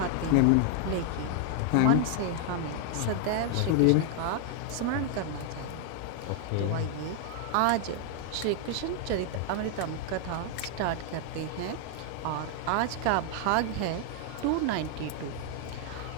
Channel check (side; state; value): both; different; correlation 0.00